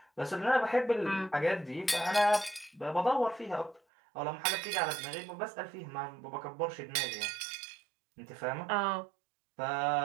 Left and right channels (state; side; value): drops out; left; at 3.8 s